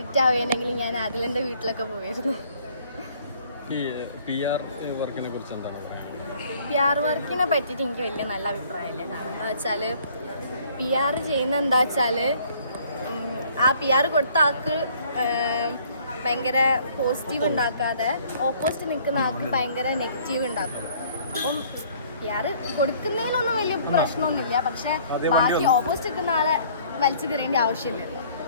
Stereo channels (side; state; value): both; inverted; correlation -0.58